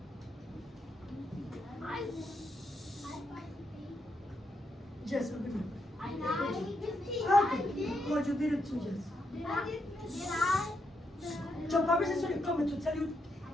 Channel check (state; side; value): normal; both; correlation 0.80